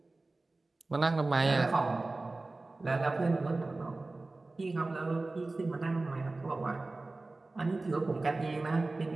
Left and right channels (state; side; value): quieter; left; 3.2 dB